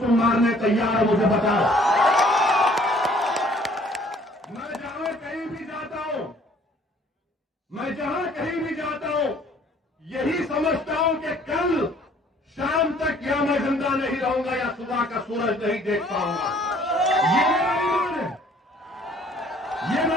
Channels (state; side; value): normal; both; correlation 0.58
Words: मारने तैयार हो, मुझे बताओ। मैं जहां कहीं भी जाता हूं, मैं जहां कहीं भी जाता हूं, यही समझता हूं कि कल शाम तक या मैं जिंदा नहीं रहूंगा या सुबह का सूरज नहीं देख पाऊंगा। ये मेरा ईमान है, ये